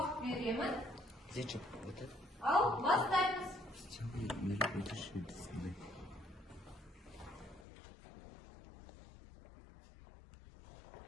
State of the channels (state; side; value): drops out; right; at 7.7 s